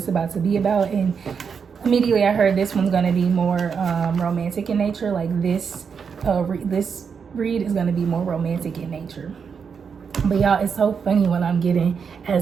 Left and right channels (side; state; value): left; quieter; 6.3 dB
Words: is about to be about, and immediately I heard this one's gonna be more romantic in nature. Like this read is gonna be more romantic in nature. But y'all, it's so funny when I'm getting